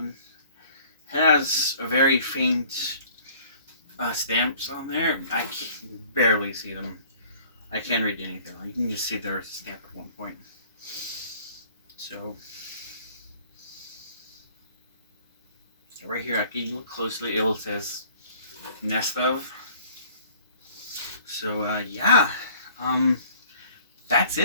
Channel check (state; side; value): inverted; both; correlation -0.54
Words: It has a very faint stamps on there. I can barely see them. I can't read anything. You can just see there's a stamp at one point. So right here, I can look closely. It says Nestof. So yeah, that's